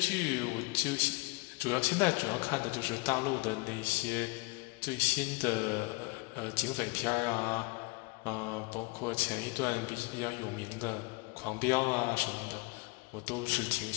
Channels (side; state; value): right; quieter; 27.6 dB